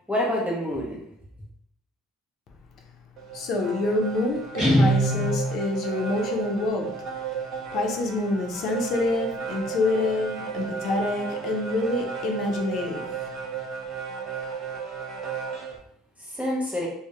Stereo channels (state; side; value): normal; both; correlation 0.57